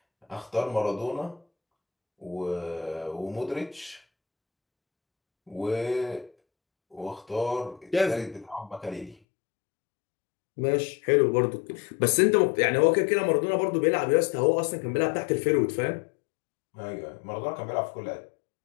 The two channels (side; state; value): right; drops out; at 9.2 s